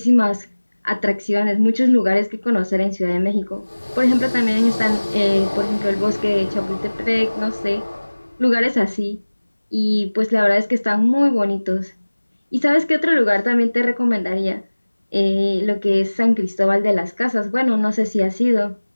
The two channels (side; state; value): both; inverted; correlation -1.00